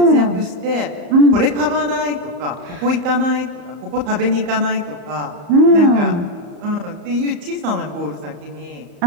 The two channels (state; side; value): late; left; 34 ms